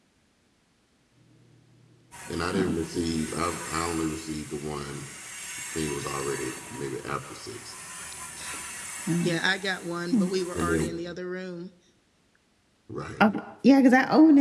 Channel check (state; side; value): identical; both; correlation 1.00